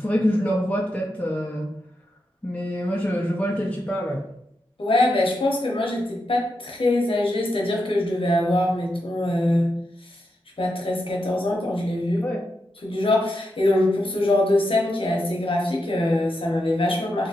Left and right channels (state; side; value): normal; both; correlation 0.85